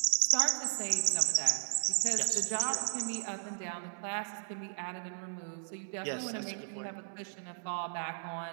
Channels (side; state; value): left; silent; digital silence